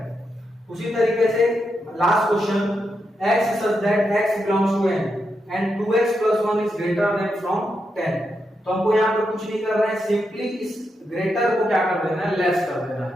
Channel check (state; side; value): normal; both; correlation 0.84